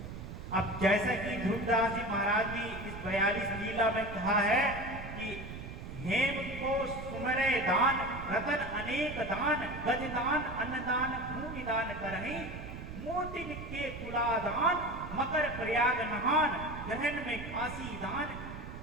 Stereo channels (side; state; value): right; noise; rumble, 10 dB below the sound